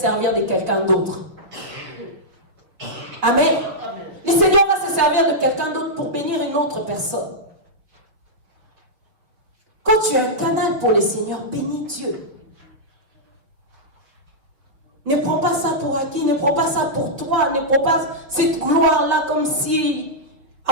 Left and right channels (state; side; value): late; left; 5.9 ms